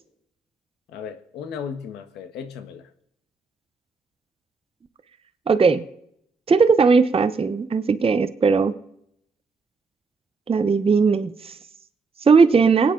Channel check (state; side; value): quieter; left; 4.5 dB